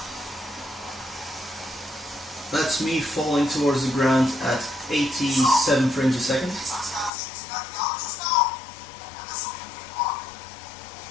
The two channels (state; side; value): drops out; right; at 7.1 s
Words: That's me falling towards the ground at 87 frames a second.